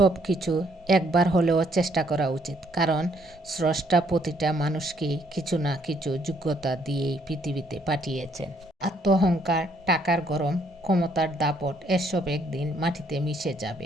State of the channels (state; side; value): normal; both; correlation 0.68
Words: কিছু একবার হলেও চেষ্টা করা উচিত, কারণ স্রষ্টা প্রতিটা মানুষকেই কিছু না কিছু যোগ্যতা দিয়েই পৃথিবীতে পাঠিয়েছেন। আত্মঅহংকার, টাকার গরম, ক্ষমতার দাপট এসব একদিন মাটিতে মিশে